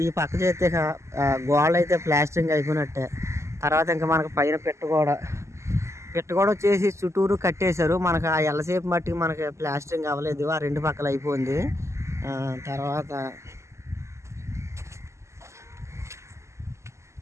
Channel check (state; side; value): late; left; 0.13 ms